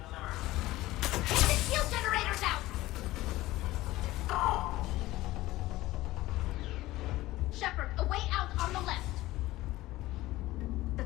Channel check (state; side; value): quieter; right; 17.5 dB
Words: Get the shield generators out! Shepard, a way out on the left.